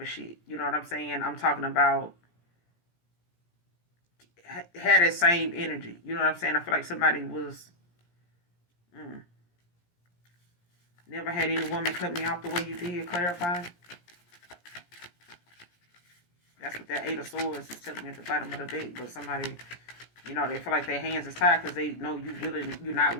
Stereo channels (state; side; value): late; right; 17 ms